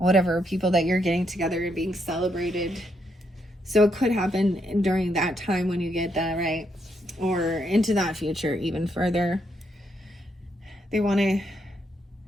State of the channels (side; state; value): both; normal; correlation 0.77